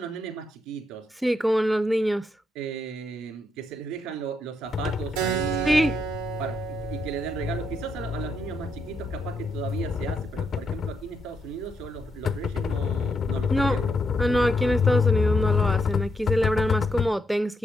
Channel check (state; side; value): normal; both; correlation 0.79